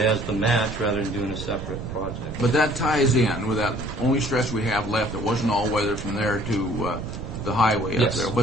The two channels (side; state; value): right; noise; rumble, 9 dB below the sound